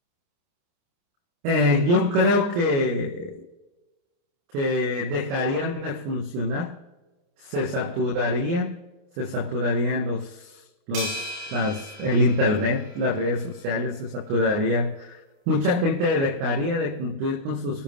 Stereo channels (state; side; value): late; left; 29 ms